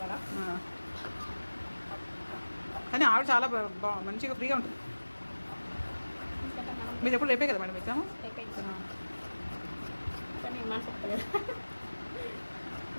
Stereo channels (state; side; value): inverted; both; correlation -1.00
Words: కానీ ఆవిడ చాలా మంచిగా ఫ్రీగా ఉంటుంది. మీరు ఎప్పుడు రేపే కదా మేడం ఎగ్జామ్?